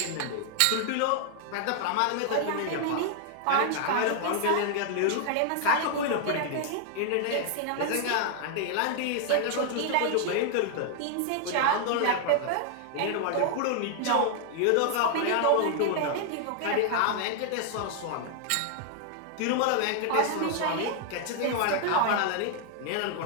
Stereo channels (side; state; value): both; different; correlation 0.00